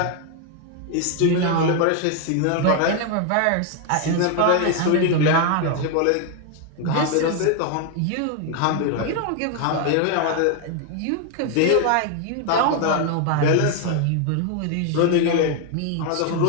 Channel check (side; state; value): both; different; correlation 0.01